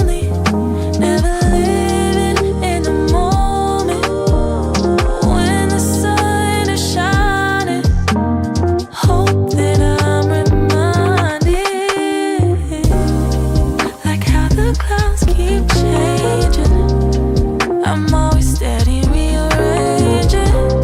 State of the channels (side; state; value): both; identical; correlation 1.00